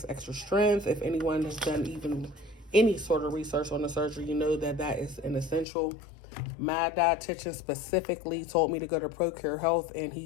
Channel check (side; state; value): right; drops out; at 5.7 s